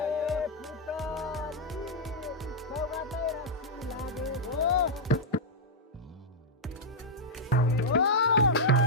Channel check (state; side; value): normal; both; correlation -0.04